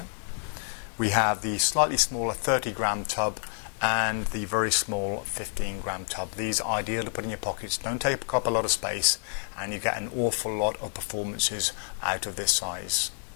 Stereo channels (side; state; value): right; silent; digital silence